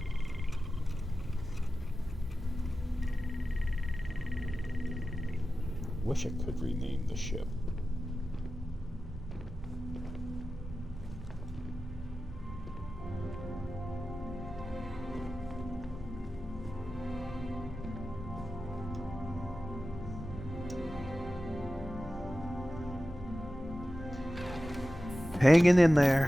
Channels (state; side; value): normal; both; correlation 0.94